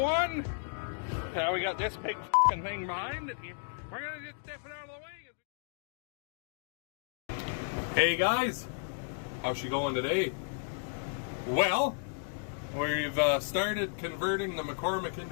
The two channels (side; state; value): right; silent; digital silence